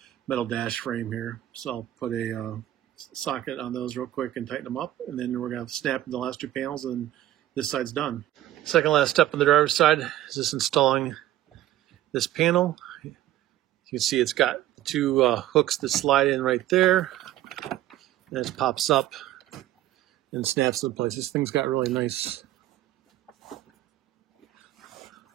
metal dash frame here. So I'll put a socket on those real quick and tighten them up, and then we're going to snap the last 2 panels, and this side's done. Second last step on the driver's side is just installing this panel. You can see it's got 2 hooks that slide in right there, and it pops up and snaps into place. This thing's got really nice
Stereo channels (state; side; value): quieter; left; 13.9 dB